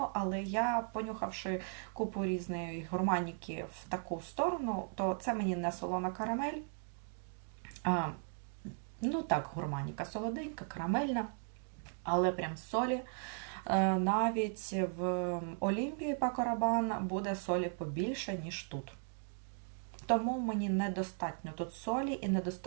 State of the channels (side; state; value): left; silent; 53 dB below the other